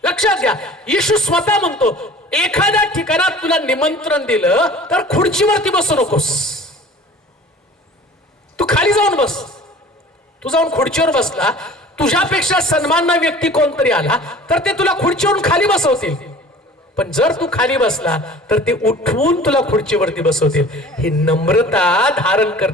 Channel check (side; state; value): both; normal; correlation 0.45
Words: लक्षात घ्या येशू स्वतः म्हणतो एखाद्या ठिकाणात तुला निमंत्रण दिलं तर खुर्चीवरती बसू नकोस. तू खाली जाऊन बस. तू जाऊन खुर्चीवर बसला, तुझ्यापेक्षा सन्मानना व्यक्ती कोणतरी आला तर ते तुला खुर्चीवरून खाली बसवतील. पण जर तू खाली बसला तर ते उठवून तुला खुर्चीवरती बसवतील. ही नम्रता धारण